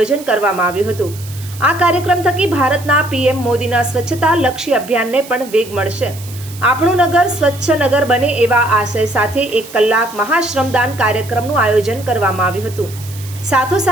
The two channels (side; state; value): right; noise; hiss, 17 dB below the sound